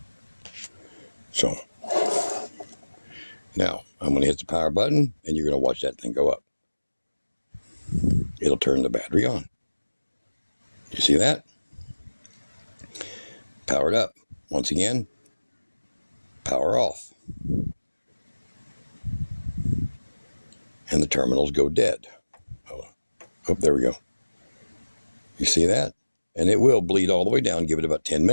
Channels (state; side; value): inverted; both; correlation -1.00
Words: So, now I'm going to hit the power button, and you're going to watch that thing go up. It'll turn the battery on. You see that? Powered up. Once again, power off. And the terminals go dead. Oh, there we go. You see that? And it will bleed all the way down, give it about 10